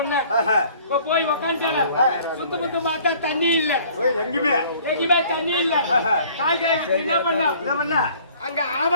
இப்ப போய் உக்காந்துட்டால சுத்த முத்த பார்த்தா தண்ணி இல்ல, எங்கேயுமே தண்ணி இல்ல. காய் என்ன பண்ண அங்க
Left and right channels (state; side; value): inverted; both; correlation -0.54